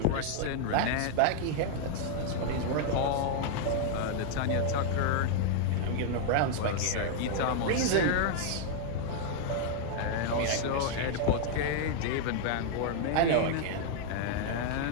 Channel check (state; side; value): different; both; correlation -0.01